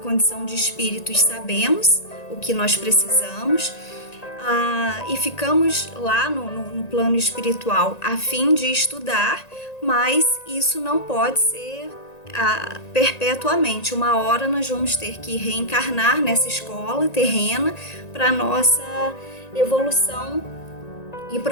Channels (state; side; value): late; right; 1.9 ms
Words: de espíritos, sabemos o que nós precisamos e ficamos lá no plano espiritual a fim de estudar, mas isso não pode ser perpetuamente. Uma hora nós vamos ter que reencarnar nessa escola terrena para nossa evolução e